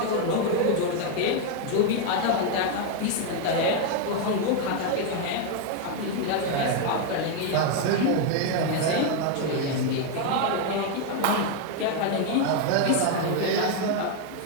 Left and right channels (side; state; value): both; different; correlation 0.01